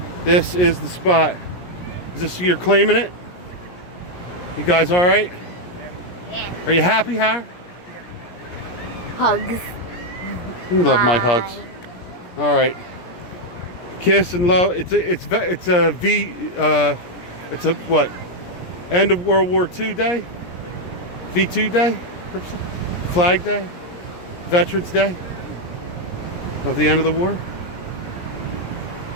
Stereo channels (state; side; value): late; right; 17 ms